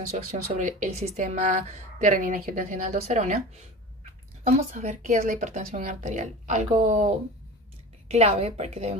su acción sobre el sistema de renina-angiotensina-aldosterona, vamos a ver qué es la hipertensión arterial. Algo clave para que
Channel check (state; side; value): normal; both; correlation 0.33